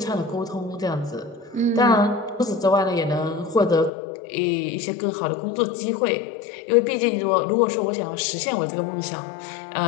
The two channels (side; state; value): right; drops out; at 3.9 s